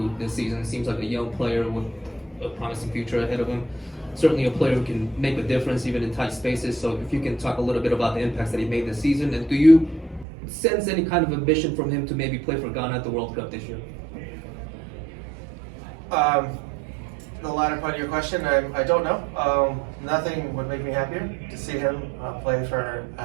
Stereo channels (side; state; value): left; drops out; at 10.2 s